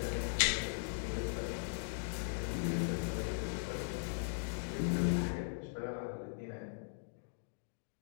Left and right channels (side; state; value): right; silent; digital silence